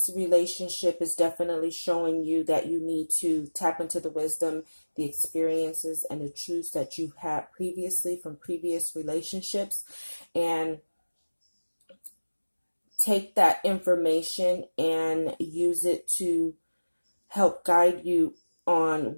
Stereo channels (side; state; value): both; inverted; correlation -1.00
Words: relationship is definitely showing you that you need to tap into the wisdom, the experiences, and the truths that you've had previously from previous relationships, and take that information and use it to help guide you on